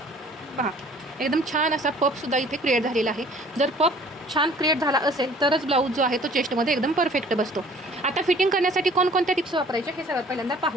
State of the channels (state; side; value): normal; both; correlation 0.52